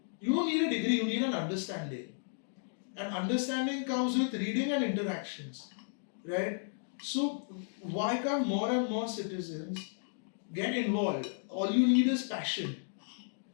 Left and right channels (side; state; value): right; silent; digital silence